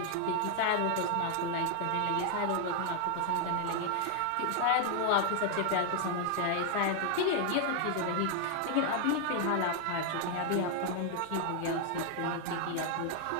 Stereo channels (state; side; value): different; both; correlation 0.00